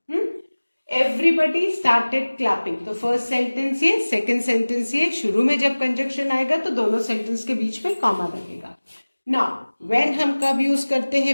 Everybody started clapping. तो first sentence ये, second sentence ये. शुरू में जब कंजक्शन आएगा तो दोनों सेंटेंस के बीच में कॉमा लगेगा. नाउ व्हेन हम कब यूज करते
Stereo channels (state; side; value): inverted; both; correlation -1.00